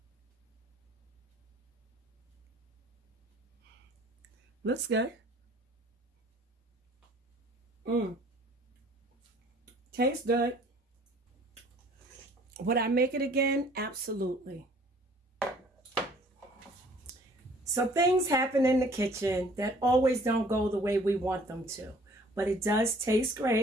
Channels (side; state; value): both; normal; correlation 0.55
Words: Looks good. Tastes good. Would I make it again? Absolutely. So things happen in the kitchen that always don't go the way we want them to. But it does taste